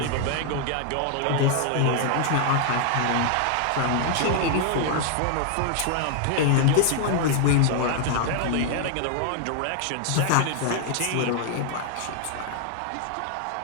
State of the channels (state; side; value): different; both; correlation 0.00